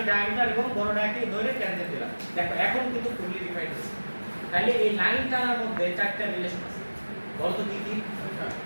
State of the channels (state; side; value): inverted; both; correlation -1.00